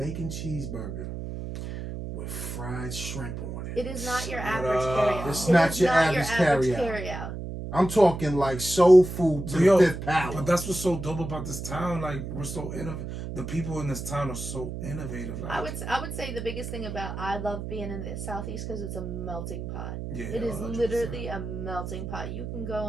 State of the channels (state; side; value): noise; right; hum, 7 dB below the sound